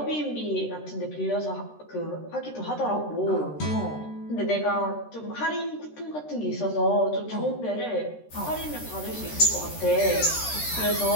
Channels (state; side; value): late; right; 13 ms